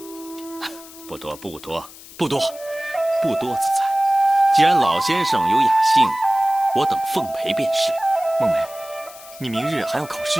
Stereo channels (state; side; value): noise; left; hiss, 19 dB below the sound